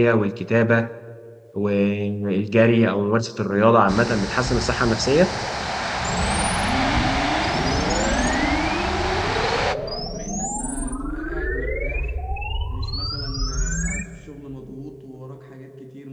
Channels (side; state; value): both; identical; correlation 1.00